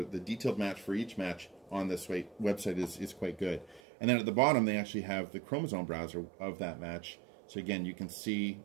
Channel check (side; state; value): left; drops out; at 3.8 s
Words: detailed match for each match on this website is quite good. And then at the bottom, they actually have the chromosome browser of that match. So again, you can see